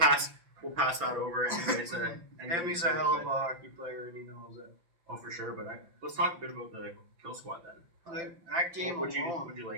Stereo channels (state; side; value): late; left; 5.9 ms